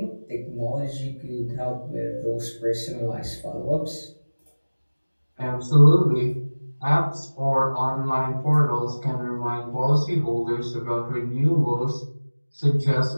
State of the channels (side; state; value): both; inverted; correlation -1.00